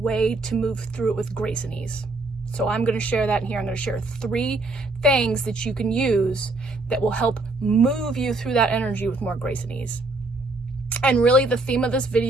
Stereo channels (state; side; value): quieter; left; 3.0 dB